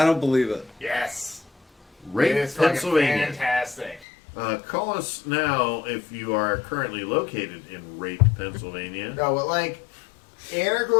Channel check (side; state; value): right; drops out; at 4.0 s